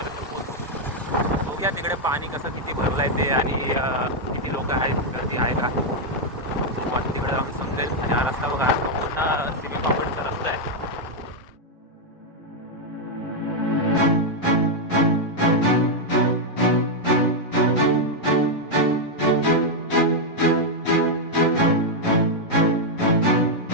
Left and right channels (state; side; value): normal; both; correlation -0.01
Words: पोहोचू. बघूया तिकडे पाणी कसं किती भरलं आहे ते आणि किती लोक आहेत, गर्दी आहे का तिकडे आम्ही समजेल. आणि हा रस्ता बघा, पूर्ण सिमी कॉम्प्लेक्सचा रस्ता आहे.